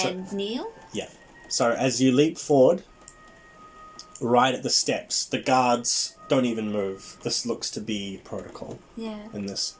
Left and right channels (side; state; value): both; identical; correlation 1.00